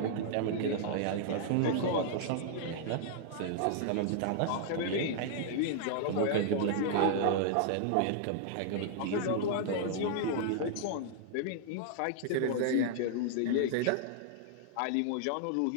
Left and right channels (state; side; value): different; both; correlation -0.01